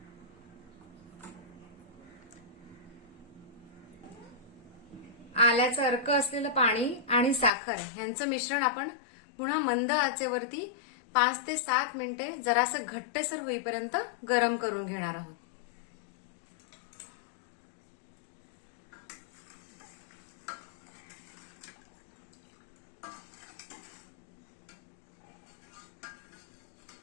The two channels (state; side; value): drops out; right; at 7.5 s